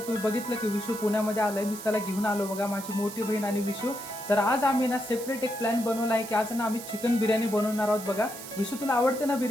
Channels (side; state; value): right; noise; hiss, 12 dB below the sound